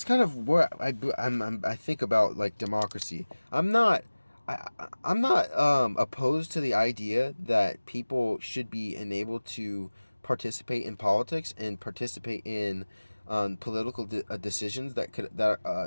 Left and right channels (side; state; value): both; inverted; correlation -1.00